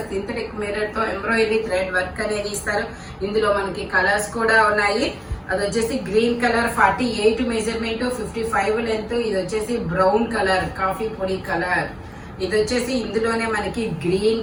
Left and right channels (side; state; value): both; identical; correlation 1.00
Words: సింథటిక్ మిర్రర్ తో ఎంబ్రాయిడరీ థ్రెడ్ వర్క్ అనేది ఇస్తారు. ఇందులో మనకి కలర్స్ కూడా ఉన్నాయి. అది వచ్చేసి గ్రీన్ కలర్ 48 మెజర్మెంట్ 55 లెంత్. ఇది వచ్చేసి బ్రౌన్ కలర్ కాఫీ పొడి కలర్. ఇది వచ్చేసి ఇందులోనే మనకి గ్రీన్